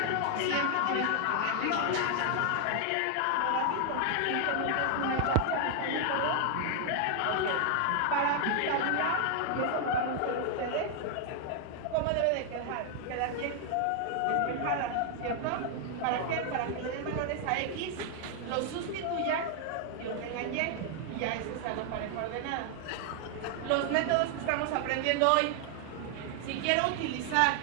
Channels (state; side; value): different; both; correlation 0.00